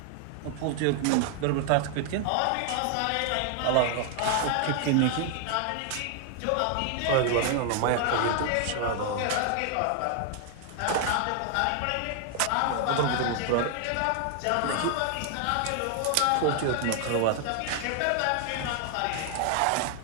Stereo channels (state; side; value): different; both; correlation 0.00